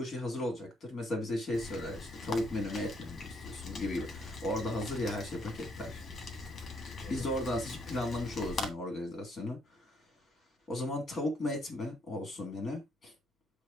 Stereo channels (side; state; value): both; normal; correlation 0.71